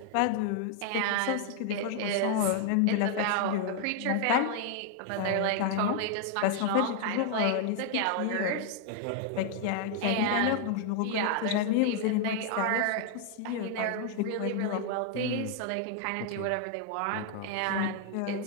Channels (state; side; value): different; both; correlation 0.00